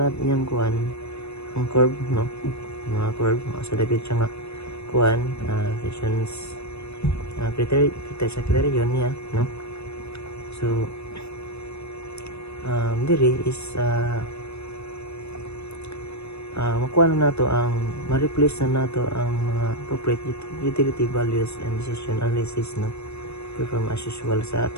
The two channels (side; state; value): right; late; 0.80 ms